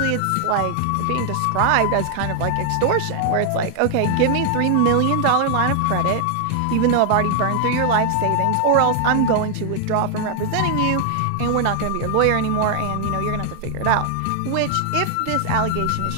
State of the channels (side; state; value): both; different; correlation 0.00